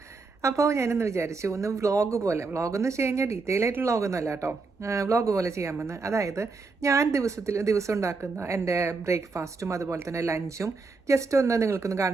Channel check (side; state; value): left; quieter; 4.1 dB